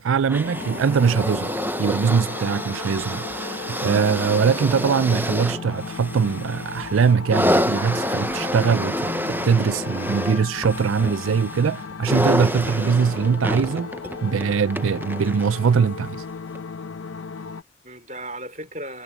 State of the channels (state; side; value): quieter; left; 4.1 dB